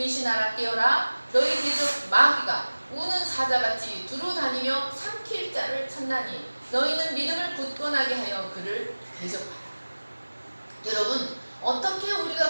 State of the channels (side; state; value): both; inverted; correlation -1.00